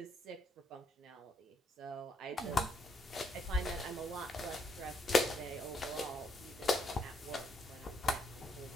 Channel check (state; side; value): normal; both; correlation 0.73